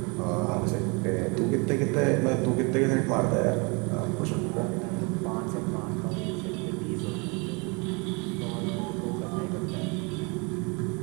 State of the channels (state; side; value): quieter; left; 30.2 dB